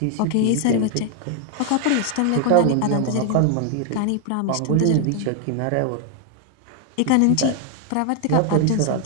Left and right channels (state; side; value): different; both; correlation 0.00